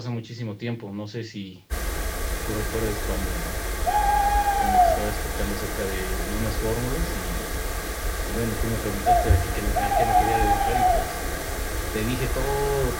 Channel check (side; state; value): both; identical; correlation 1.00